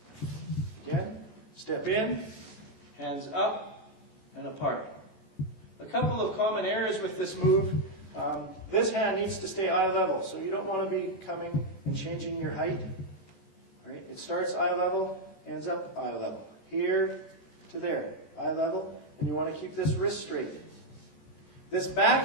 Again, step in, hands up and apart. A couple of common errors with this move. This hand needs to stay eye level, so you don't want to be coming and changing your height. All right? It starts eye level, ends up eye level. Here to there, eye level, and you want to keep this wrist straight. This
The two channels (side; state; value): right; late; 14 ms